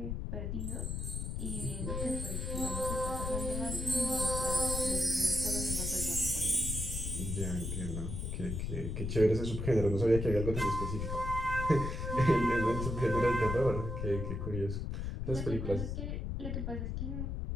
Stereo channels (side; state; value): left; noise; rumble, 3 dB below the sound